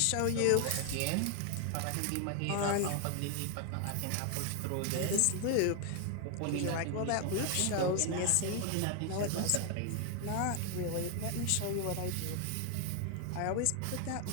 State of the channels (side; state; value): both; different; correlation 0.00